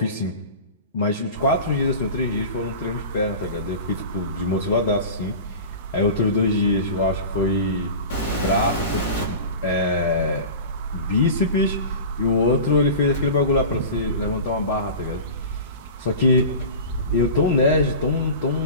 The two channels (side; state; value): both; inverted; correlation -0.34